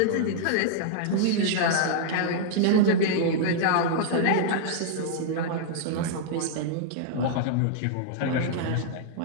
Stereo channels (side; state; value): both; different; correlation -0.01